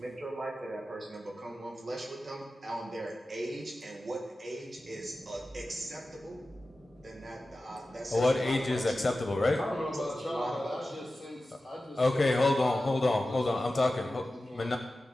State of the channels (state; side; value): normal; both; correlation 0.94